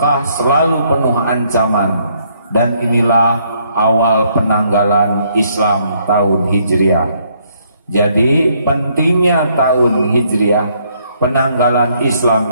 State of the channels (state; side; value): inverted; both; correlation -0.69